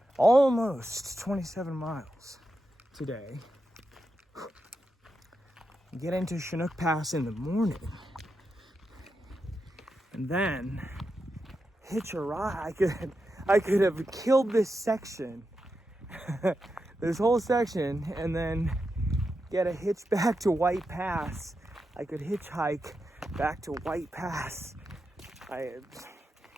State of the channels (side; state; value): both; normal; correlation 0.87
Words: almost 27 miles today. Get into Chinook Pass in the morning. And then hitch a ride. I could have killed this section, this whole section, and then get a hitch back to White Pass. I could hitchhike back to White Pass.